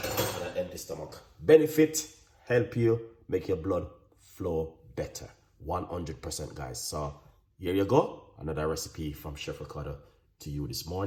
empty stomach. Benefit, help you make your blood flow better, 100%, guys. So here you go, another recipe from Chef Ricardo to you this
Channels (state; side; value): identical; both; correlation 1.00